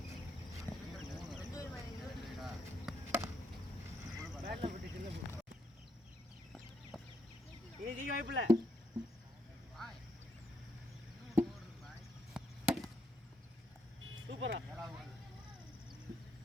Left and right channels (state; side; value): normal; both; correlation 0.77